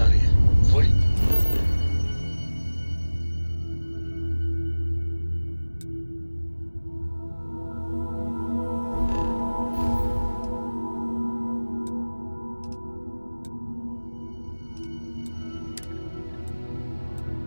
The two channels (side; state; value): both; inverted; correlation -1.00